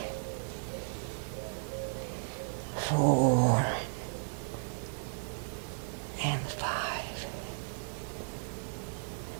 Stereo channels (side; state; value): left; silent; digital silence